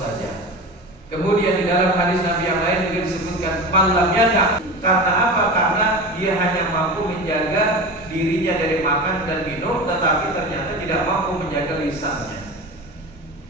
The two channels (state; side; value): normal; both; correlation 0.29